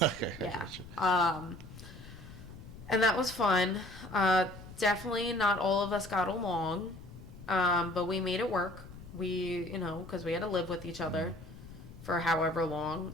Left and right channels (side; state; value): left; noise; rumble, 16 dB below the sound